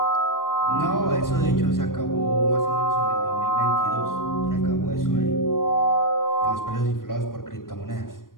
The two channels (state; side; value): late; right; 0.91 ms